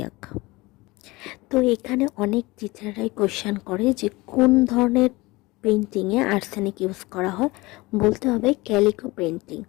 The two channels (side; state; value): right; quieter; 22.0 dB